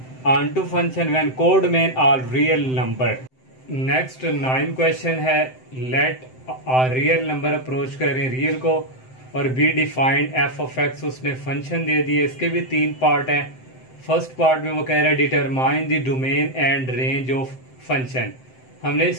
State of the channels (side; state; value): right; late; 7.8 ms